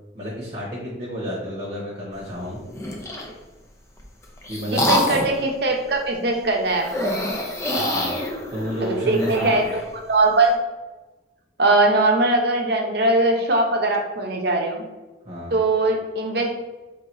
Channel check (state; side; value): normal; both; correlation -0.03